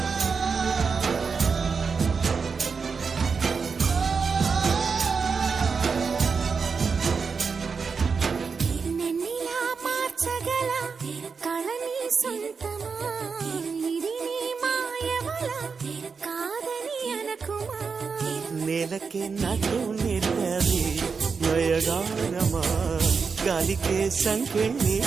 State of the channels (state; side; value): quieter; left; 5.3 dB